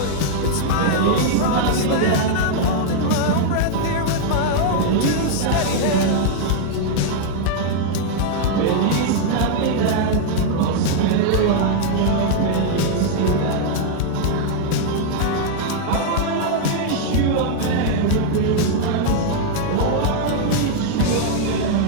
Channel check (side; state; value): both; different; correlation -0.01